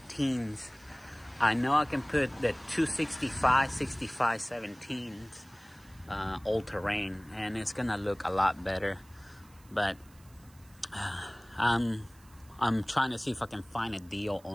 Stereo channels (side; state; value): right; noise; hiss, 27 dB below the sound